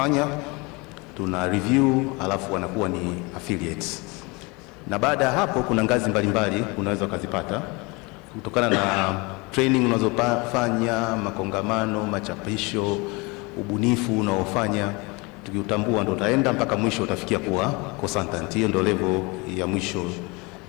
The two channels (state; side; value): quieter; right; 26.8 dB